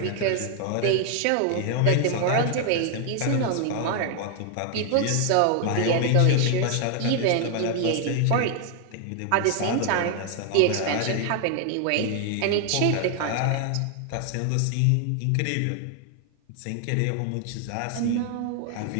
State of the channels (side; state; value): both; different; correlation 0.00